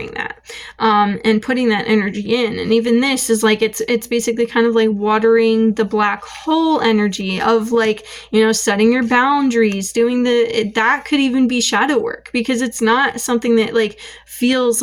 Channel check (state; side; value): identical; both; correlation 1.00